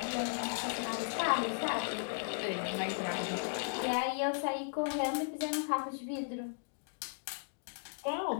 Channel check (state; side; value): silent; right; digital silence